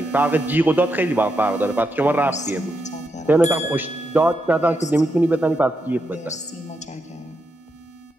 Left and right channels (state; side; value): normal; both; correlation 0.83